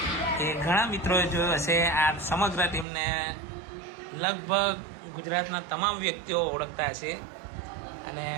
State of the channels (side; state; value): left; drops out; at 2.9 s